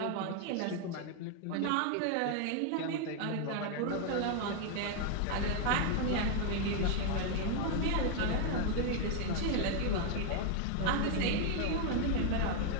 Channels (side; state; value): both; different; correlation 0.00